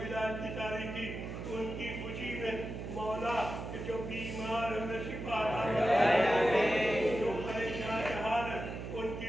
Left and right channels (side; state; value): right; noise; hum, 7 dB below the sound